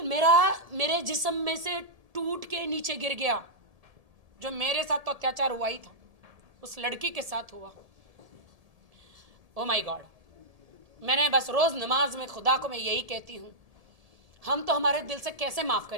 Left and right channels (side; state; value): left; late; 1.7 ms